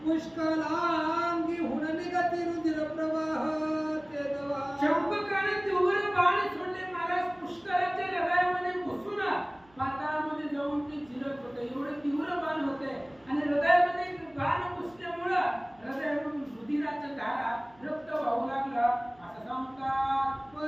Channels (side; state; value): right; noise; hum, 30 dB below the sound